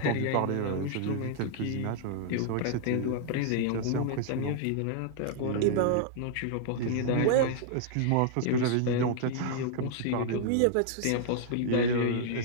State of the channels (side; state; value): both; different; correlation -0.01